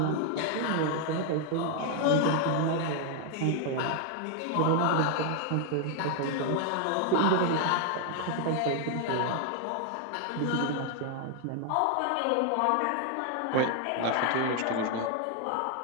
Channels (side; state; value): both; different; correlation 0.00